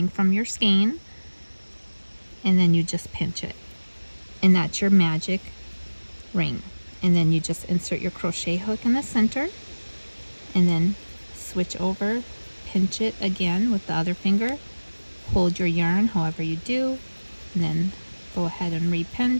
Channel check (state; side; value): inverted; both; correlation -1.00